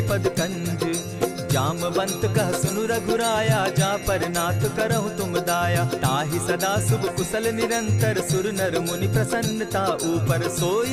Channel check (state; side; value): identical; both; correlation 1.00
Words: पद कंज। जामवंत कह सुनु रघुराया, जा पर नाथ करहु तुम दाया। ताहि सदा शुभ कुशल निरंतर, सुर नर मुनि प्रसन्नता ऊपर।